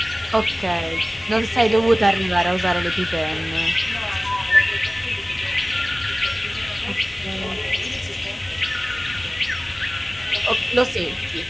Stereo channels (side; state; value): both; normal; correlation 0.98